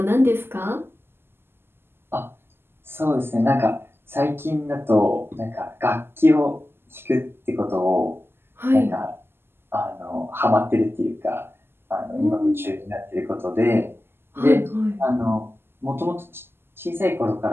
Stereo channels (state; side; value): late; left; 0.11 ms